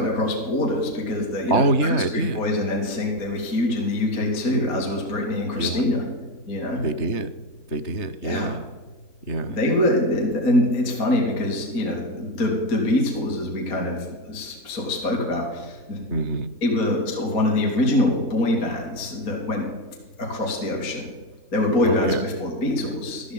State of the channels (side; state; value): right; late; 4.2 ms